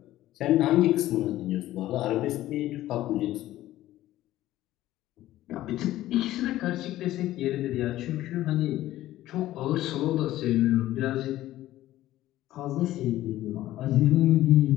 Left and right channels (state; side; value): quieter; right; 14.8 dB